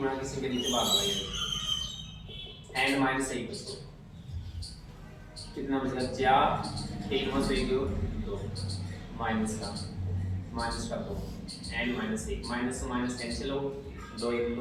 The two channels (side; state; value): both; identical; correlation 1.00